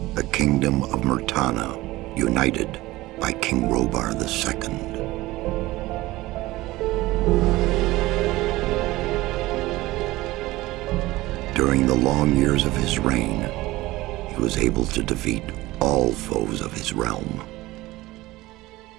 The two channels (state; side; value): quieter; left; 18.6 dB